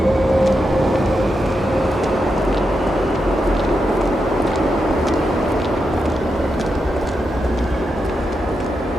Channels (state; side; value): normal; both; correlation 0.86